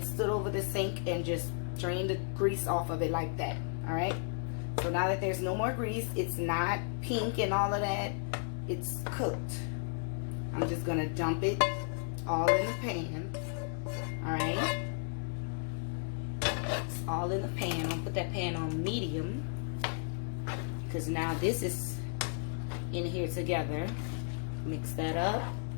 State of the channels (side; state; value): right; silent; digital silence